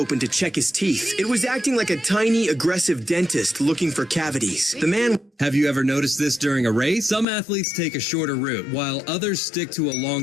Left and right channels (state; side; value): drops out; right; at 7.2 s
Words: to check his teeth. It was acting like a tiny, aggressive dentist looking for cavities. The man... Have you ever noticed this during a race? Some athletes take a shorter route, while others stick to a